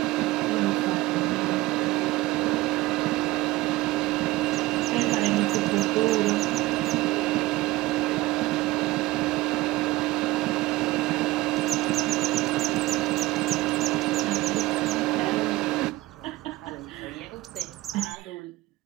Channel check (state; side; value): quieter; left; 18.6 dB